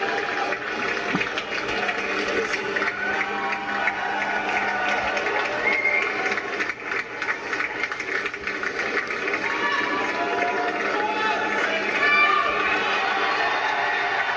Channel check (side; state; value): both; identical; correlation 1.00